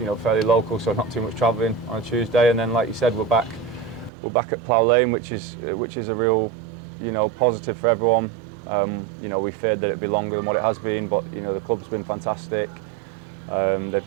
know, fairly local, so not too much travelling on a Tuesday, and then like you said, we're back at Plough Lane, which is a real, you know, positive for everyone. You know, we feared that it'd be longer than what it has been, but you know, the club's been fantastic. They've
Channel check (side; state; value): left; drops out; at 4.1 s